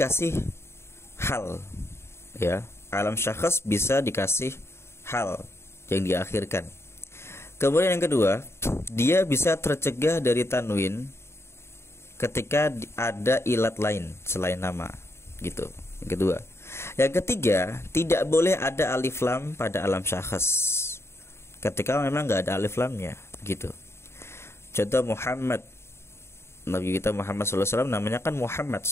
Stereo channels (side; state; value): right; late; 0.12 ms